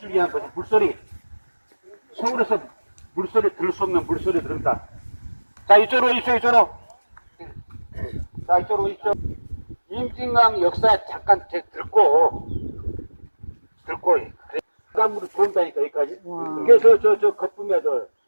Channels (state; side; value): inverted; both; correlation -1.00